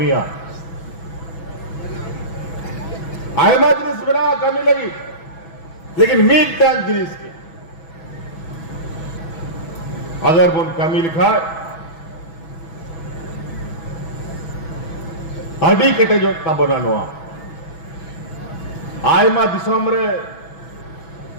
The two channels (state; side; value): late; right; 6.1 ms